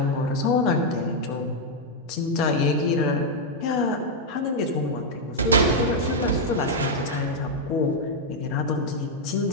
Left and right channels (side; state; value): both; normal; correlation -0.02